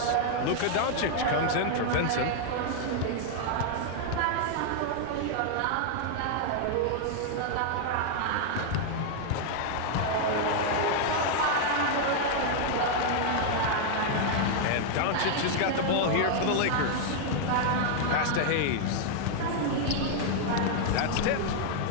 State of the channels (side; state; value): both; different; correlation 0.00